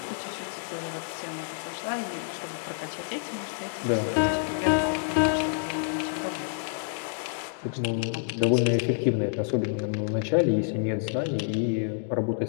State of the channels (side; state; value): right; silent; digital silence